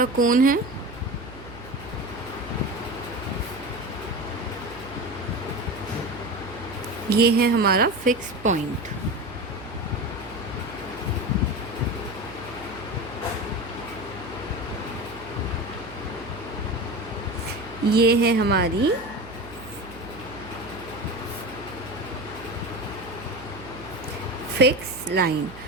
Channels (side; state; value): right; noise; hum, 16 dB below the sound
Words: कोन है। ये है हमारा फिक्स पॉइंट। ये है हमारी फिक्स लाइन